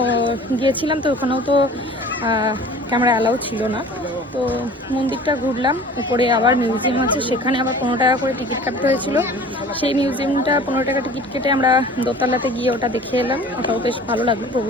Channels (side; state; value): both; normal; correlation 0.44